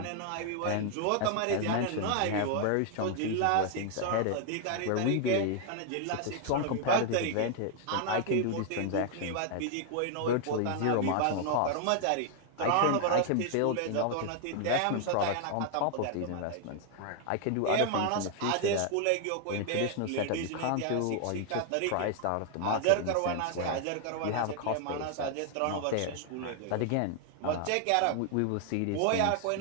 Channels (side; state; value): both; different; correlation 0.00